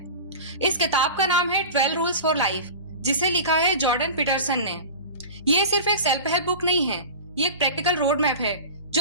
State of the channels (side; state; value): both; inverted; correlation -0.33